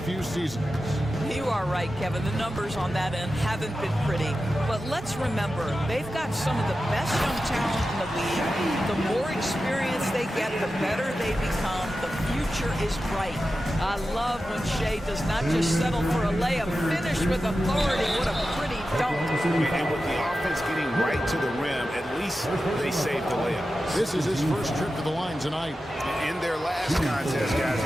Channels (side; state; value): both; normal; correlation 0.92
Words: few seasons. You are right, Kevin. The numbers on that end haven't been pretty. But let's remember, they've got some of the best young talent in the league. The more experience they get, the better they become. The future is bright. I love when Shea does not just settle for a layup, finish with authority. What a pretty dunk. And with the offense getting right to the rim, at least they saved the layup. This is his first trip to the line tonight. In their last contest, guys,